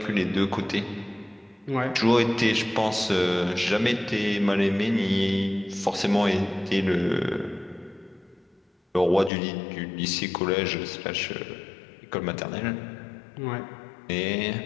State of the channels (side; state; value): right; drops out; at 9.3 s